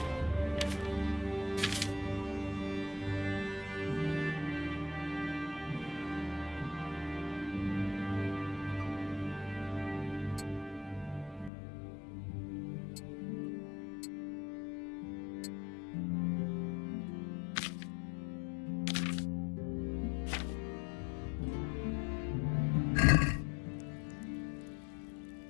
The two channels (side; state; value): right; drops out; at 11.5 s